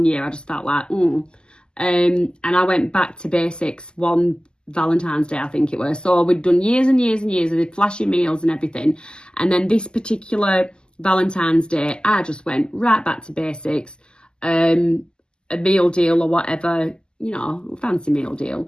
year I just felt like, and I went back to basics one Valentine's Day, I think it was. So we'd done years and years and years of flashy meals and everything. And then this particular Valentine's Day, I just went right back to basics. A meal deal or whatever, fancy meal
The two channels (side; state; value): right; late; 0.047 ms